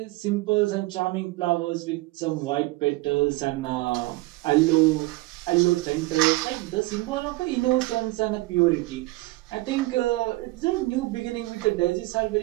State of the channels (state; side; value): quieter; left; 20.6 dB